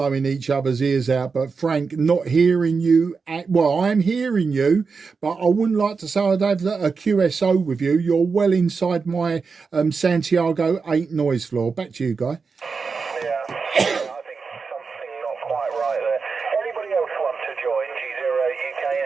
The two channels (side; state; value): left; quieter; 5.0 dB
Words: each other's ears out. But Frank, not hearing you. Well, I'm hearing you, but I wouldn't like to say I'd have a QSO with you. You're well inside my Santiago 8 noise floor. Back to you, Guy.